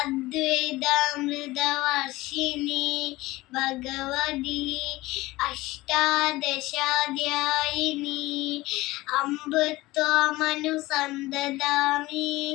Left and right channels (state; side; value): quieter; right; 19.2 dB